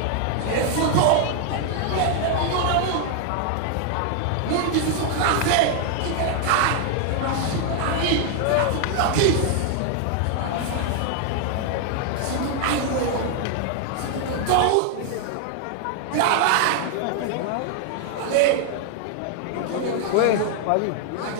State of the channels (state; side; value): different; both; correlation 0.00